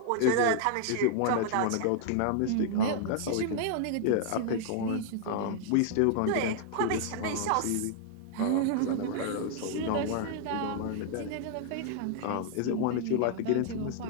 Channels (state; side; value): different; both; correlation -0.01